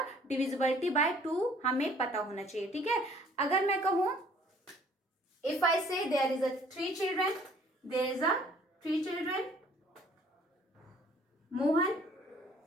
डिविजिबिलिटी बाय 2 हमें पता होना चाहिए. ठीक है. अगर मैं कहूं, if I say there is a 3 children, there is a 3 children, Mohan,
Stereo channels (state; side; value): normal; both; correlation 0.57